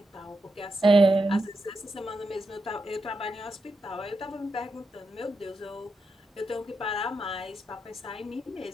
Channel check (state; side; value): normal; both; correlation 0.86